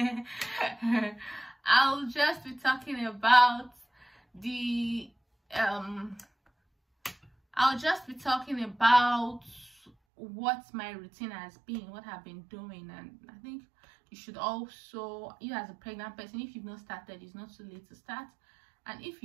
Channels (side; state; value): left; drops out; at 9.9 s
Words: I'll just be talking about the what my routine has been, what I've been doing. And I think you should also, you as a pregnant person, if you've not started, it's not too late to start, and if